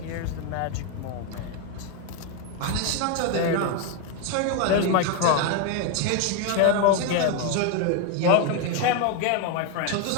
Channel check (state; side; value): different; both; correlation 0.01